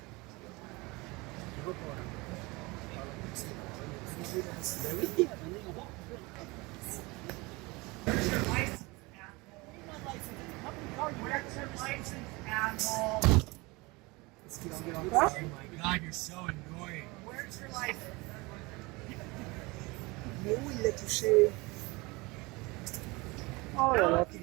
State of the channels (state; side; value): quieter; left; 24.3 dB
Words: Where's your license, asshole? Oh my god, you're so annoying. Where's your license? Mais où il l'a touché? Oh là là, qu'il